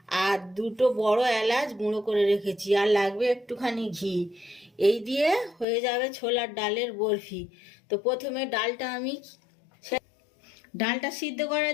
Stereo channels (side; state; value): right; drops out; at 5.7 s